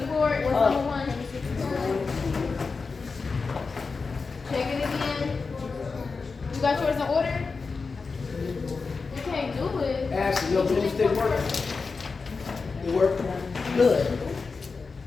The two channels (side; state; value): right; quieter; 4.5 dB